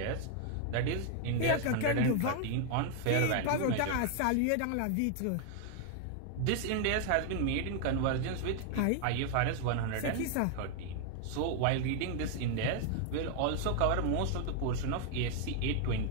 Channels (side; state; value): both; different; correlation 0.00